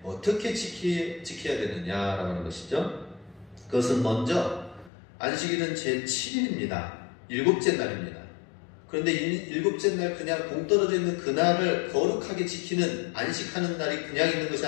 어떻게 지켜야 되느냐라고 하는 것이죠. 그것은 먼저 안식일은 제7일입니다. 일곱째 날입니다. 그런데 일곱째 날 그냥 동떨어져 있는 그날을 거룩하게 지키는 안식하는 날이 그냥 있는 것이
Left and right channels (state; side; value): drops out; right; at 4.9 s